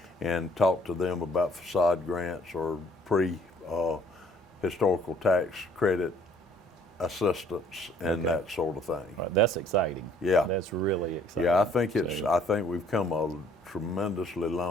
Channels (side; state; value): both; normal; correlation 0.60